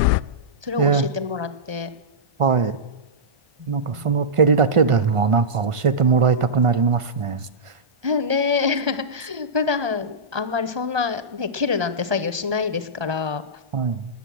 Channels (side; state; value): left; late; 1.2 ms